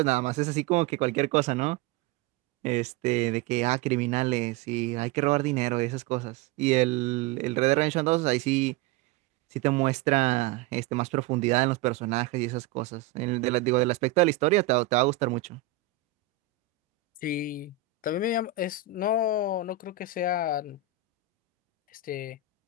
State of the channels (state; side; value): quieter; left; 9.5 dB